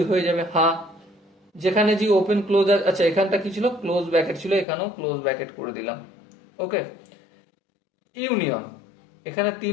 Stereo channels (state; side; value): drops out; right; at 4.7 s